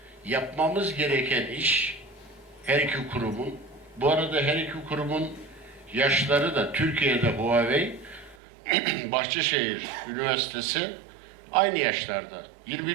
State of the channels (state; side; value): drops out; left; at 8.3 s